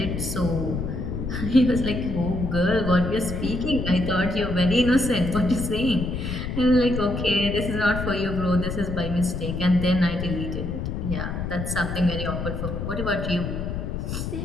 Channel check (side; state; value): left; noise; rumble, 4 dB below the sound